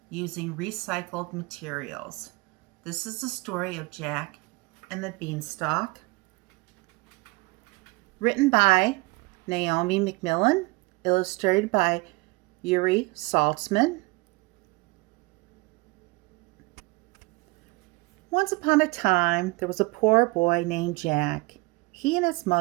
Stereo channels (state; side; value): quieter; left; 24.5 dB